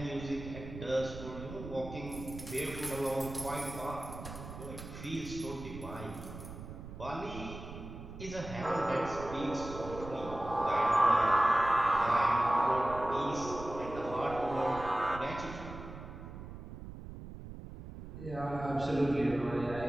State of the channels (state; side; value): noise; right; rumble, 11 dB below the sound